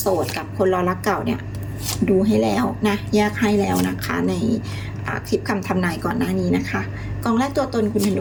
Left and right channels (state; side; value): identical; both; correlation 1.00